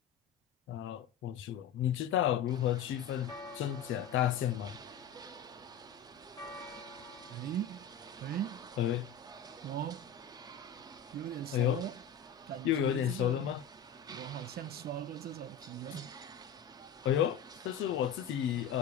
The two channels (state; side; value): quieter; right; 6.7 dB